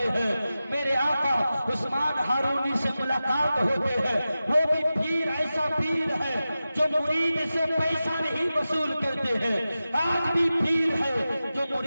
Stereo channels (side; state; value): both; inverted; correlation -0.94